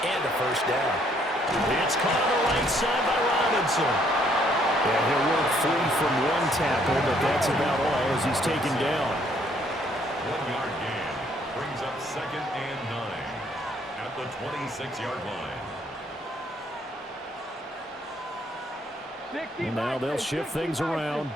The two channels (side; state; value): both; normal; correlation 0.66